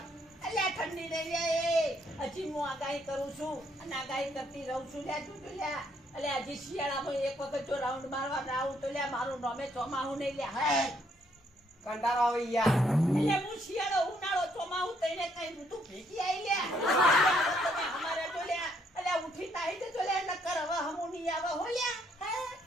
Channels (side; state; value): both; normal; correlation 0.70